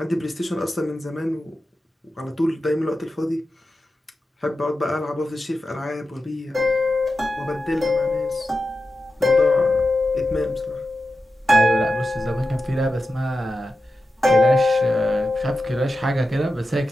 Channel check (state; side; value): normal; both; correlation 0.91